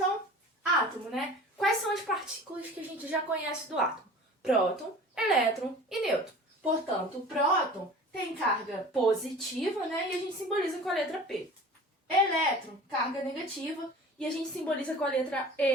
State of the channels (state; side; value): normal; both; correlation 0.41